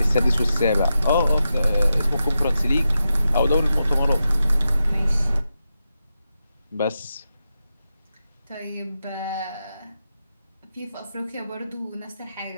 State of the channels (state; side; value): inverted; both; correlation -0.88